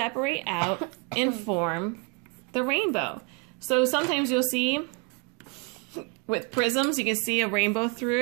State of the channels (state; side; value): quieter; left; 31.8 dB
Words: out and form the rainbow. So sometimes you'll see with prisms, you can see a rainbow through